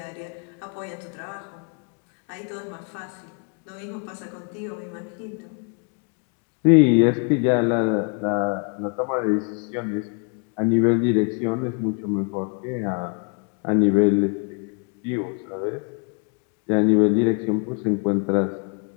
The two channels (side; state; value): right; quieter; 39.3 dB